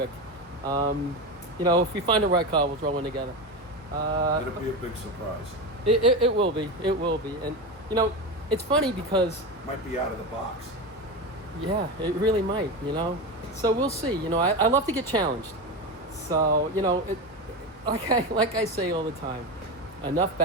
If we find the right car, we'll throw one together. It'll be a big surprise. It will be. It will be. And, it's funny because... Might be out of the box. Yeah, it really might, So we'll see. I love to get challenged. So, like I say all the time, enough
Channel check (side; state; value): both; normal; correlation 0.20